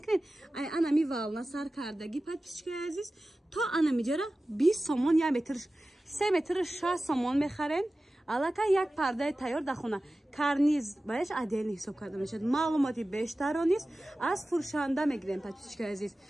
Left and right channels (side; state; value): both; normal; correlation 0.96